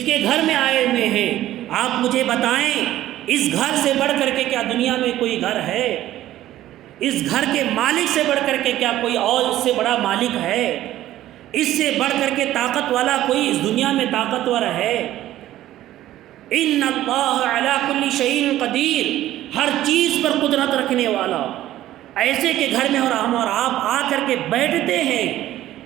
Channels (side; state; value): left; quieter; 13.9 dB